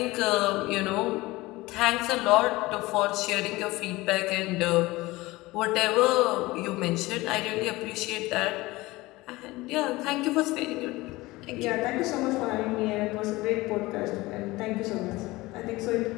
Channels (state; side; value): quieter; right; 20.3 dB